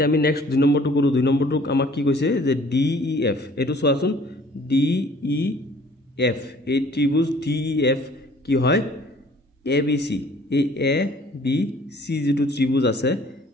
আমি নেক্সট 2 নম্বৰটো কৰো 2 নম্বৰটোক আমাক কি কৈছে যে DEF এটো চোৱাচোন DEF এই ত্ৰিভুজ DEF কি হয় ABC এই ABC যেটো ত্ৰিভুজ আছে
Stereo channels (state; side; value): normal; both; correlation 0.54